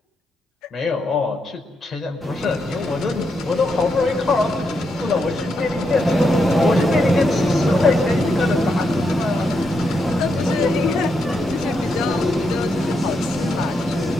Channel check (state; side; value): normal; both; correlation 0.82